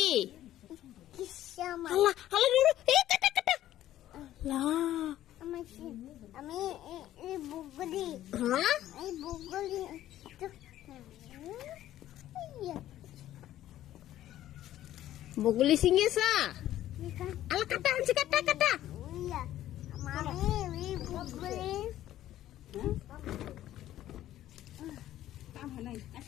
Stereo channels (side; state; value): right; quieter; 13.2 dB